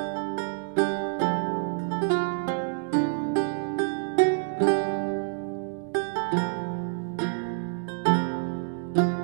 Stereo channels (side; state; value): left; silent; digital silence